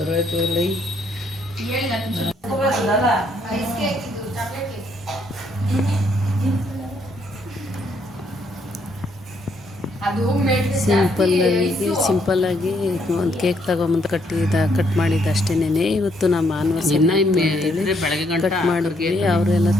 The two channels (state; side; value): normal; both; correlation 0.71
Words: ಇಲ್ಲ ಸಿಂಪಲ್ಲಾಗಿ ಒಂದು ಕೇಕ್ ತಗೊಂಬಂದು ಕಟ್ ಮಾಡಿದ್ದು ಅಷ್ಟೇನೆ. ಇವತ್ತು ನಮ್ಮ ಆನಿವರ್ಸರಿ ಅಂತೇಳಿ ಕಟ್ ಮಾಡಿದ್ವಿ. ಅವರೆಲ್ಲ